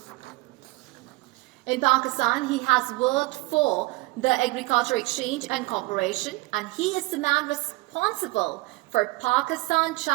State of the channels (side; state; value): left; quieter; 22.0 dB